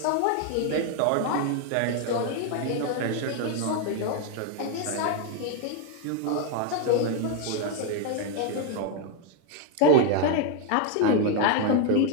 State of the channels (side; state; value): both; different; correlation 0.01